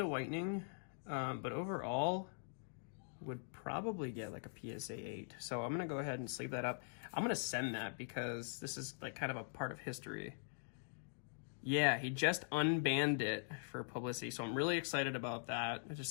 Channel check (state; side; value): silent; right; digital silence